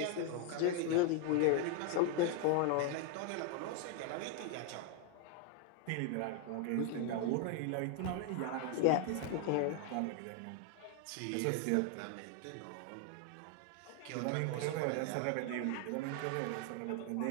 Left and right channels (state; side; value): different; both; correlation 0.00